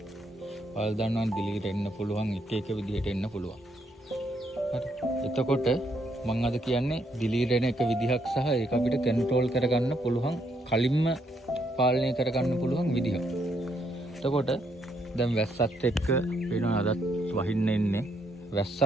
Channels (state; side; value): normal; both; correlation 0.74